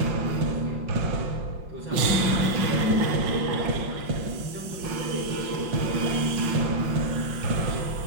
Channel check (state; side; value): late; left; 5.5 ms